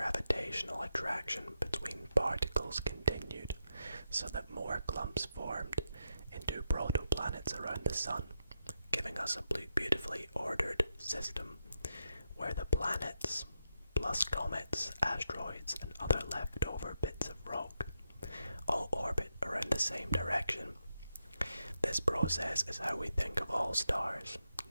attraction between particles continued, so that more clumps formed into protoplanets around the sun, giving us a beautifully ordered system where the planets, plus comets, asteroids, and other leftover bits of rock, all orbit around the same direction. This process is how we think of all stars,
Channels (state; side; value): inverted; both; correlation -0.84